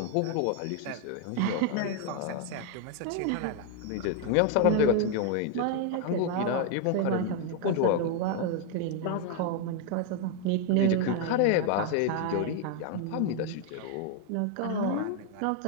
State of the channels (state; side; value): different; both; correlation 0.01